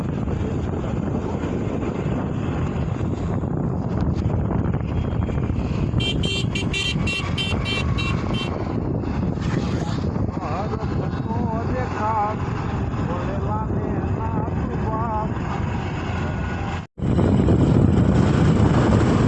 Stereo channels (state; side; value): identical; both; correlation 1.00